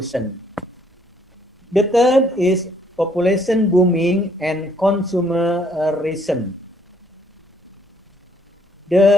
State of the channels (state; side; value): normal; both; correlation 0.66